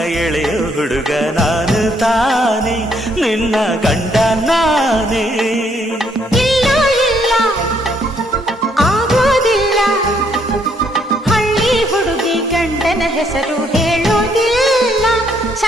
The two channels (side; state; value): both; normal; correlation 0.70